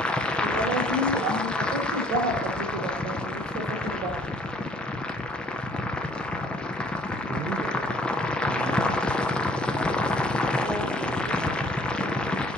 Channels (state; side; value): normal; both; correlation 0.59